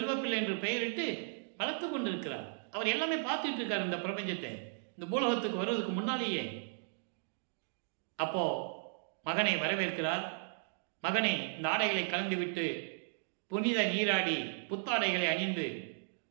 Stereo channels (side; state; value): left; silent; digital silence